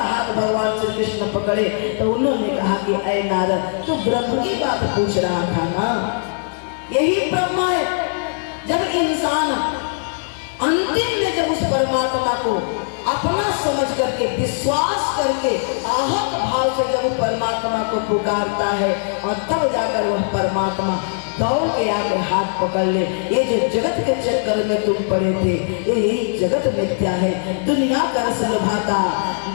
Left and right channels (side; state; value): right; silent; digital silence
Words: हाथ भगवान श्री कृष्ण पकड़े तो उन्होंने कहा कि ऐ नारद, तू ब्रह्म की बात पूछ रहा था ना, यही ब्रह्म है। जब इंसान अंतिम में जब उस परमात्मा को अपना समझ करके, विश्वास करके, आहत भाव से जब परमात्मा को पुकारता है और तब जाकर वह परमात्मा दौड़ के आके हाथ पकड़ ले। ये जो जगत के चक्कर में तुम पड़े थे, यही जगत मिथ्या है। दुनिया का रस लुभाता,